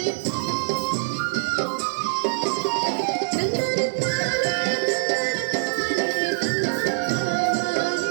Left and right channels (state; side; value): silent; left; digital silence